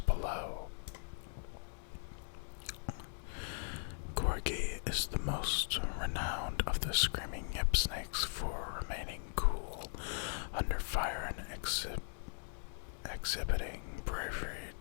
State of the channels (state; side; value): silent; right; digital silence